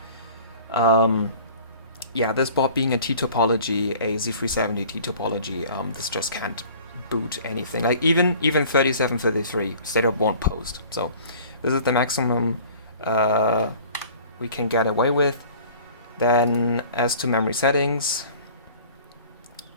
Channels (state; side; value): inverted; both; correlation -0.47